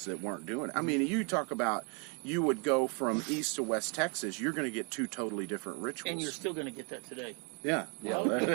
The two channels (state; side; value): quieter; left; 36.2 dB